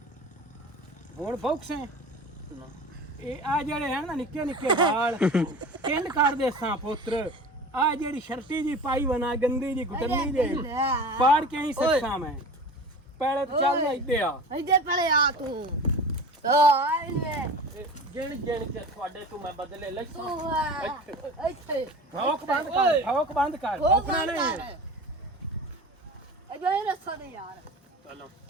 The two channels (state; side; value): normal; both; correlation 0.36